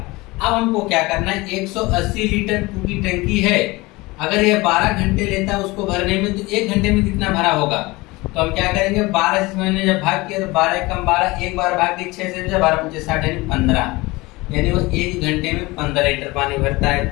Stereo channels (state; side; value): quieter; right; 22.2 dB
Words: हमको क्या करना है, 180 लीटर की टंकी है, अगर ये 12 घंटे लेता है उसको भरने में, तो 1 घंटे में कितना भरा होगा। तो हम क्या करेंगे, 12 से मैंने जब भाग किया तो 12 कम 12, एक बार भाग के 6 से 12 25 60 यानी 15, यानी वो 1 घंटे में 15 लीटर पानी भरता है।